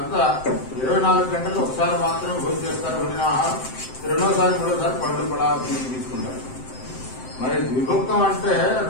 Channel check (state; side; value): late; right; 7.7 ms